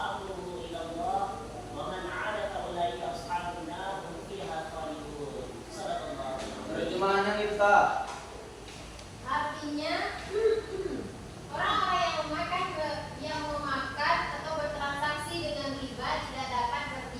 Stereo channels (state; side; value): identical; both; correlation 1.00